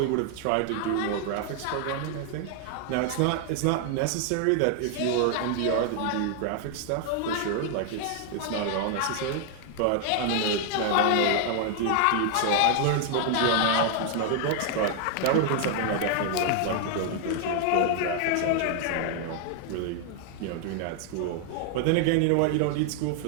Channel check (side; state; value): both; different; correlation 0.00